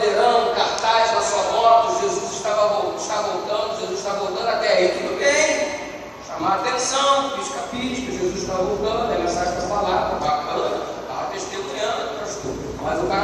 um cartaz na sua moto, Jesus está voltando, até aí tudo bem. Chamar a atenção, pisca-pisca, Jesus está voltando, a mensagem está falada, bacana. Testemunhando, pastor. Mas o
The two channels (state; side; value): identical; both; correlation 1.00